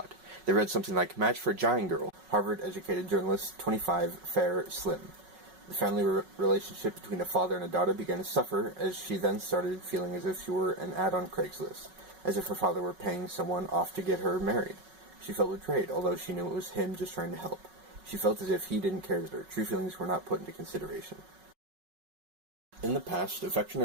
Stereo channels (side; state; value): left; late; 5.4 ms